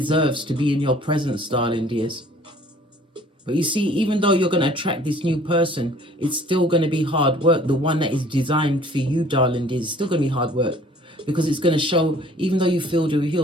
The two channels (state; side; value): normal; both; correlation 0.54